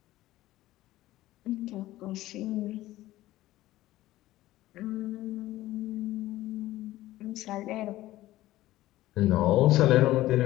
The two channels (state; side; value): quieter; right; 16.0 dB